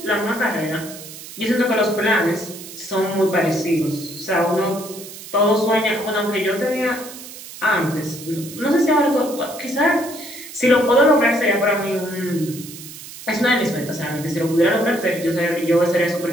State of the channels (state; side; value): noise; right; hiss, 14 dB below the sound